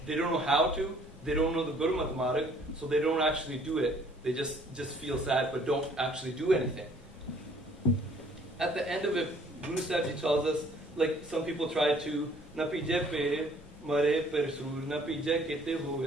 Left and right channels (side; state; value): both; normal; correlation 0.58